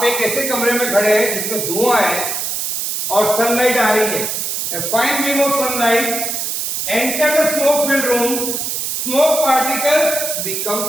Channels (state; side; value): noise; right; hiss, 2 dB below the sound